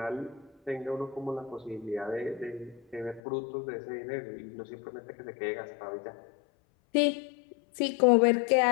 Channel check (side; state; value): right; drops out; at 3.2 s